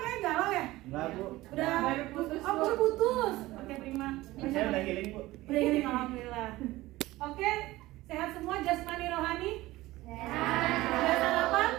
kayak galau ya? Enggak, Bu. Udah Baru putus, Oh, Bu. baru putus. Oke, Prima. Saya udah healing, Bu. Udah ini alhamdulillah. Oke, sehat semua jasmani rohani? Udah sarapan?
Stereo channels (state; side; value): quieter; left; 18.2 dB